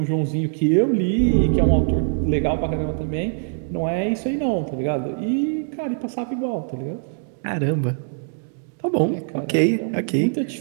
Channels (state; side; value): silent; left; digital silence